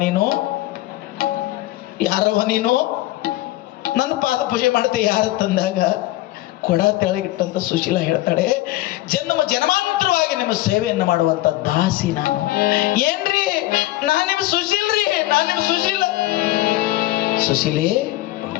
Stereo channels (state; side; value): quieter; right; 17.1 dB